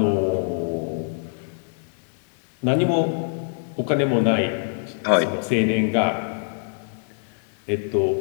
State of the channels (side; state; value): right; silent; digital silence